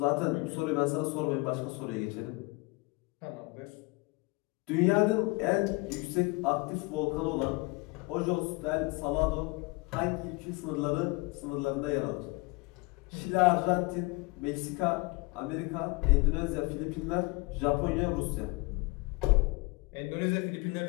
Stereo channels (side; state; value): right; quieter; 26.0 dB